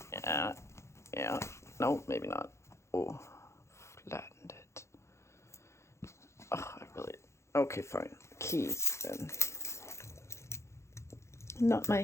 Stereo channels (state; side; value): late; right; 0.14 ms